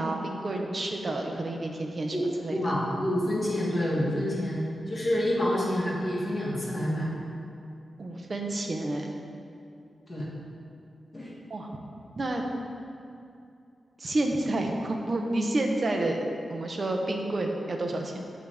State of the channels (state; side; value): normal; both; correlation 0.91